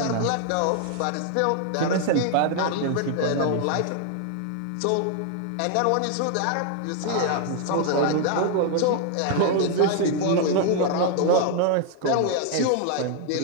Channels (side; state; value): both; different; correlation 0.00